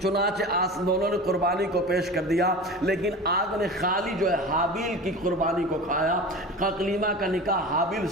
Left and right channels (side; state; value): both; normal; correlation 0.33